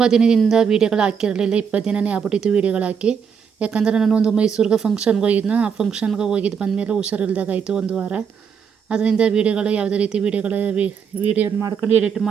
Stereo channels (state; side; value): quieter; left; 6.9 dB